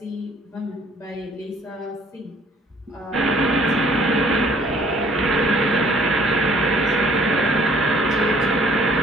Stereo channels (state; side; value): normal; both; correlation 0.58